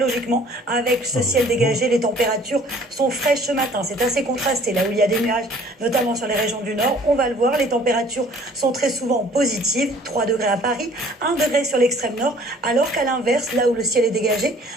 avec ce ciel dégagé, les températures sont fraîches ce matin. C'est assez contrasté là où il y a des nuages, notamment sur les régions du nord. On va le voir, les températures sont très souvent positives, 3 degrés à Paris, 1 degré sur l'extrême nord, alors qu'à l'inverse, là où le ciel est dégagé,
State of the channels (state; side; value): normal; both; correlation 0.54